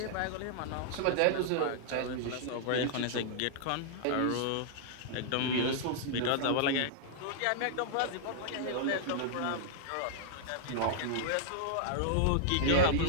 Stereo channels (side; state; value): both; different; correlation -0.01